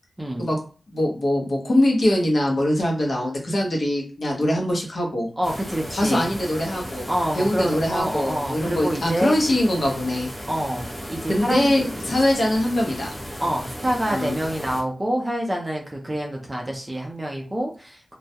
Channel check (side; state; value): both; normal; correlation 0.96